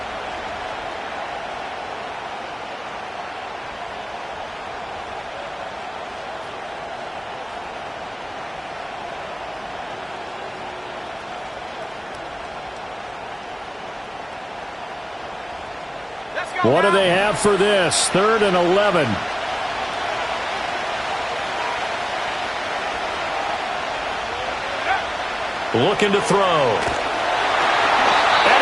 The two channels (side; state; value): both; identical; correlation 1.00